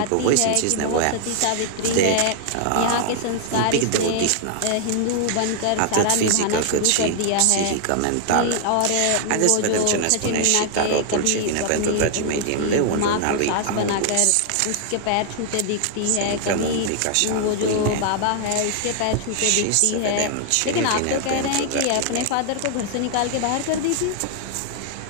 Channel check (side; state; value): both; different; correlation 0.00